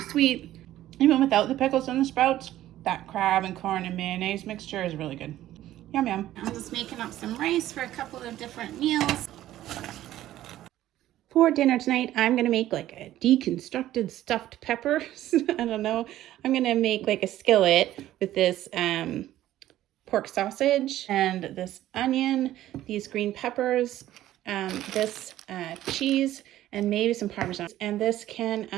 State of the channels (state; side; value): quieter; left; 13.7 dB